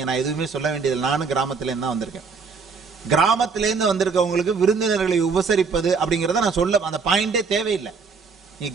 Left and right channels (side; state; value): left; quieter; 5.1 dB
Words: நான் எதுவுமே சொல்ல வேண்டியது, நானும் கிராமத்திலேருந்து தான் வந்திருக்கேன். கிராமத்திலேருந்து வந்திருக்கவங்களுக்கு விருந்தினர்களை உபசரிப்பது அப்படிங்கறத நான் சொல்ல, அந்த பாயிண்டே தேவையில்லை. நீ